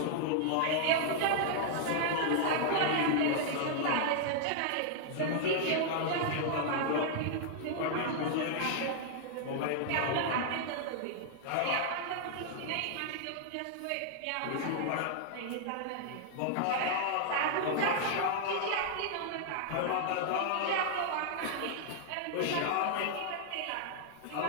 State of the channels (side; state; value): both; different; correlation -0.01